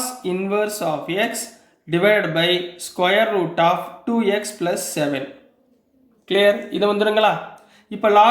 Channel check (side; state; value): both; identical; correlation 1.00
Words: inverse of x divide by square root of 2x + 7. Clear? இது வந்துடுங்களா? இப்போ